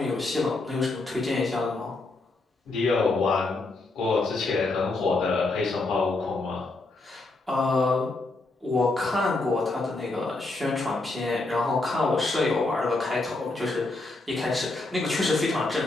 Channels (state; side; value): quieter; right; 3.2 dB